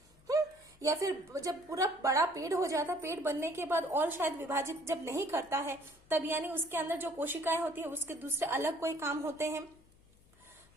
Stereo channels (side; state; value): left; noise; hum, 29 dB below the sound